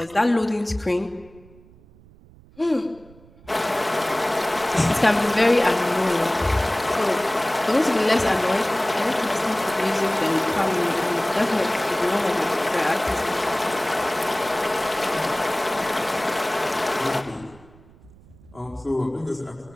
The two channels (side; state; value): right; noise; rumble, 25 dB below the sound